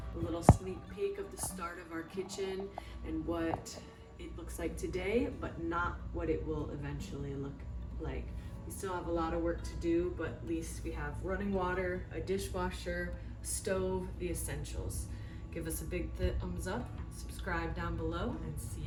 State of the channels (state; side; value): identical; both; correlation 1.00